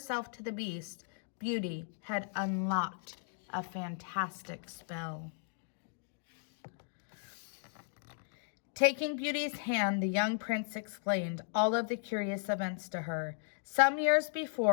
to the Beast, Beauty had unlocked a fantastic spell. Taking Beauty's hand, the young prince explained all of the curious events to her. Some years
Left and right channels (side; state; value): right; silent; digital silence